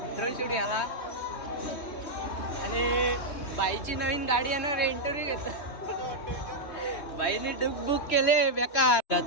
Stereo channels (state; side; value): late; right; 3.2 ms